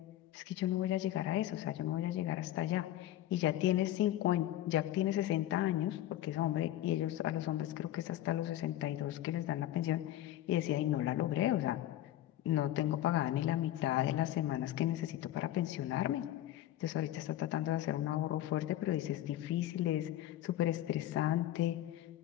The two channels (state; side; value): quieter; right; 13.4 dB